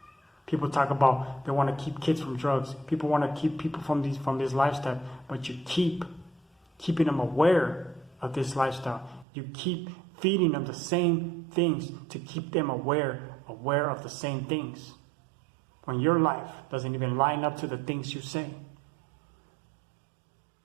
People talk about they want to keep kids from drugs. People want to keep people from this lifestyle. But you keep keeping them aware of this lifestyle. You keep feeding them the same things to keep them aware of the same things. When your life doesn't even line up to the things you say.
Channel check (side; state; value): left; drops out; at 9.2 s